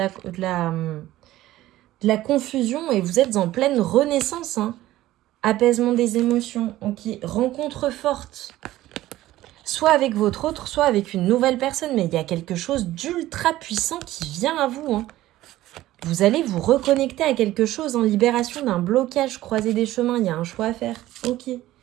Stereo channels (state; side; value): quieter; left; 15.4 dB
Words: la confusion et vous êtes en pleine renaissance. Hein. Apaisement des émotions, ok. Rencontre forte. Soit avec votre autre, soit avec une nouvelle personne. Mais il y a quelque chose d'ultra puissant qui vient à vous. Hein. Vous allez vous reconnecter à quelque chose en libération d'un blocage, croiser des chemins. Il y a un choix à faire. Ok.